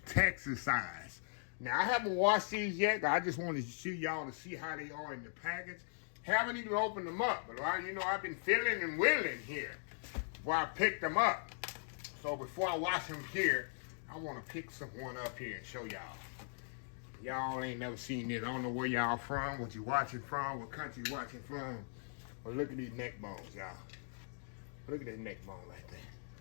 Texas size. Now, I haven't washed these yet. I just wanted to show y'all to see how they are in the package. Haven't even opened them up. But, you know, I've been feeling and willing here before I picked them up. So, before I wash them here, I want to pick one up here and show y'all. Y'all ain't never seen this. I don't know where y'all from, what you watching from, what country you watching from. But look at these neck bones, y'all. Look at that neck bone right there.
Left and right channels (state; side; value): silent; right; digital silence